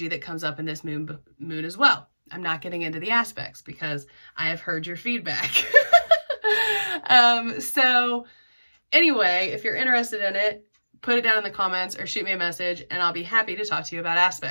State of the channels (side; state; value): both; inverted; correlation -1.00